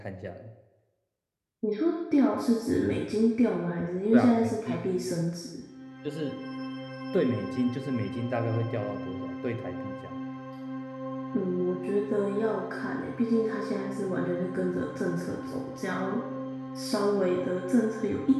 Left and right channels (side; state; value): both; identical; correlation 1.00